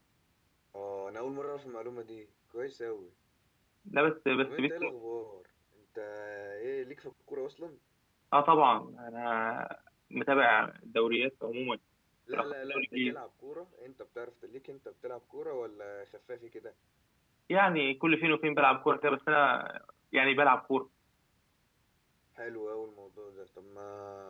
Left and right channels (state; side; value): identical; both; correlation 1.00